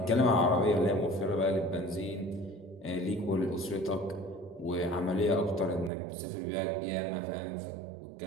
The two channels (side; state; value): left; drops out; at 5.9 s